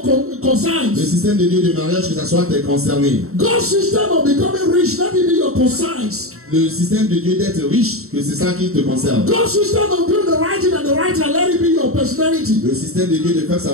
own le concerns. système de Dieu de mariage, que ça soit tes concernés. God's system of becoming rich, let it be your concerns. Le système de Dieu d'être riche, que c'est ça qui te concerne. God's system of doing the right thing and the right thing, let it be your personality. Le système de Dieu de faire sa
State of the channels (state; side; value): late; left; 0.63 ms